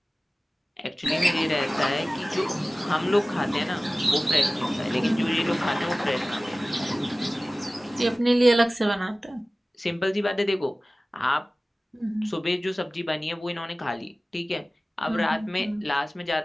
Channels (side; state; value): both; normal; correlation 0.97